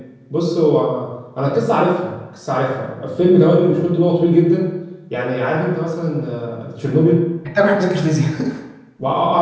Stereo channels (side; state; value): both; identical; correlation 1.00